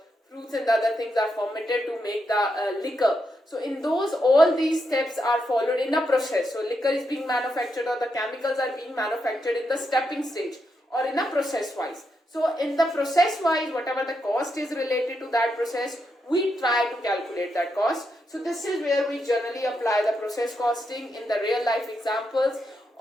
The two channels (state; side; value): normal; both; correlation 0.82